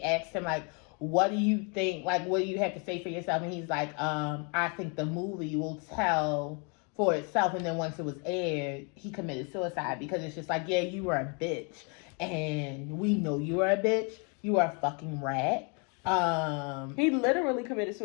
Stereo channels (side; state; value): right; quieter; 35.2 dB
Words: asked him like, what do you think, like, what do you have to say for yourself? And he's like, I think the movie will tell for itself. And then once it was aired, he committed suicide because it's just like, yeah, you were a bitch. And we know you are a bitch. You are a fucking rat. He literally committed